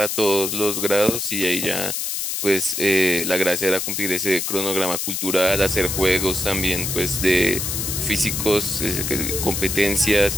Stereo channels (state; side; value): noise; left; hiss, 2 dB below the sound